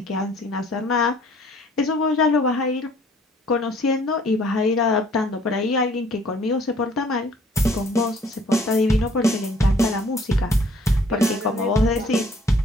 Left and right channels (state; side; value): normal; both; correlation 0.58